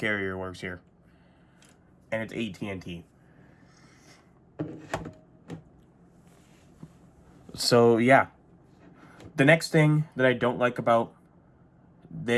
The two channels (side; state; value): both; identical; correlation 1.00